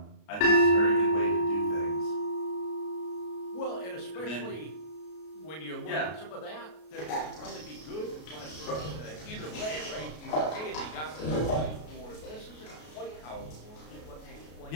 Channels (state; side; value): late; right; 33 ms